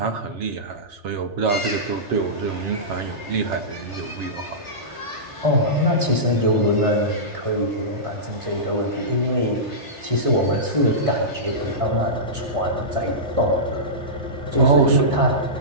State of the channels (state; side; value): late; left; 3.3 ms